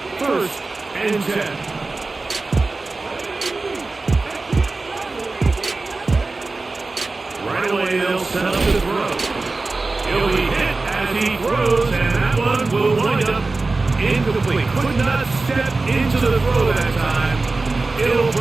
first and 10. Right away, they'll set up the throw. He'll be hit as he throws, and that one will wind up incomplete. Could not step into the throw that time. It'll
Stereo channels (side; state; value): left; quieter; 3.5 dB